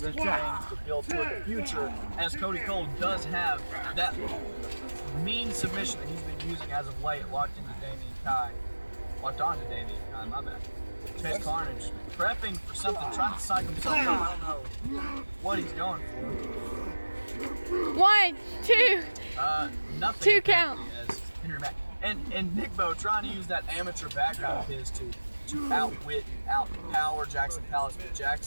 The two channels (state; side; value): inverted; both; correlation -1.00